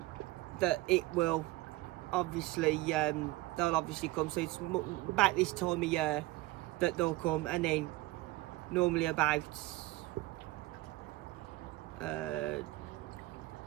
it will obviously they'll obviously come. So it's about this time of year that they'll come, and then normally about July,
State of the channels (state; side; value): quieter; left; 19.1 dB